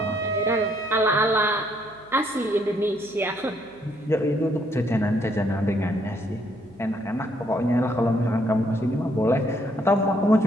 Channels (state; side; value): noise; right; hum, 27 dB below the sound